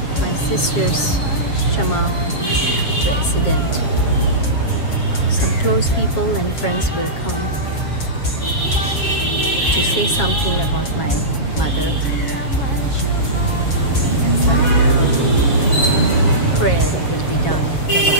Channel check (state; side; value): late; right; 7.5 ms